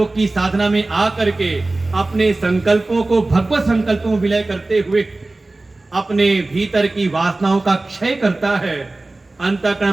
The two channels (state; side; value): quieter; left; 3.0 dB